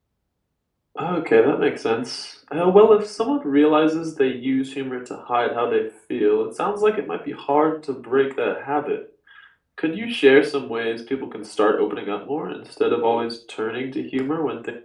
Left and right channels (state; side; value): identical; both; correlation 1.00